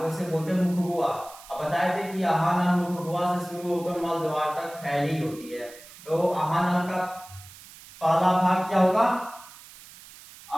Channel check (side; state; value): right; noise; hiss, 19 dB below the sound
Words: उसे बोलते हैं मुख गुहा। अब बताए थे कि आहार नाल मुख गुहा से शुरू होकर मल द्वार तक फैली होती है। तो आहार नाल का पहला भाग क्या होगा,